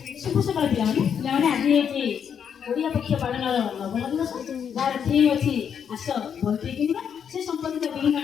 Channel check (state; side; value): quieter; right; 7.8 dB